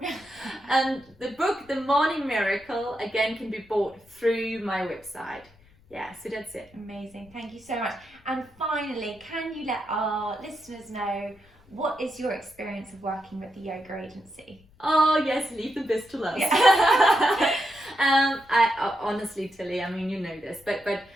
And the book, The Morning Miracle, again, can be bought through my website. Yeah, so that's it. Amazing. Thank you so much. And finally, can you let our listeners know what is your experience of working with the yoga agency? Oh yes, leave the best to last. Yeah. I honestly, Tilly, I mean, you know this, but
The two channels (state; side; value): noise; left; rumble, 29 dB below the sound